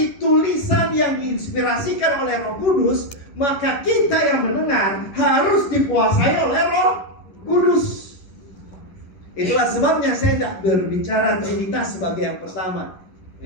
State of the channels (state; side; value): late; right; 10 ms